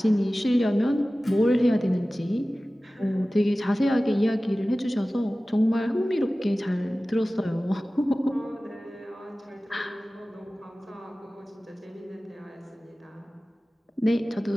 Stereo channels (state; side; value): normal; both; correlation 0.97